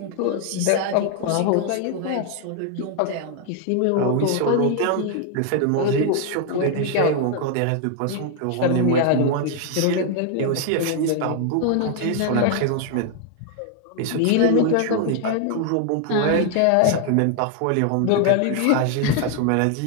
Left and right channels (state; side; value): different; both; correlation 0.00